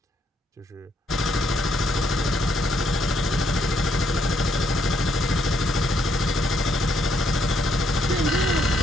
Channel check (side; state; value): both; normal; correlation 0.74